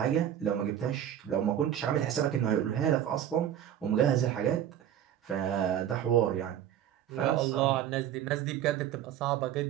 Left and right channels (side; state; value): left; quieter; 10.5 dB